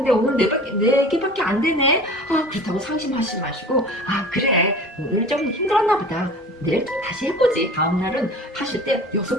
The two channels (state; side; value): normal; both; correlation 0.40